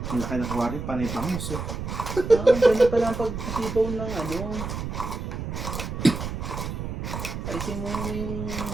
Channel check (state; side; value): noise; right; rumble, 5 dB below the sound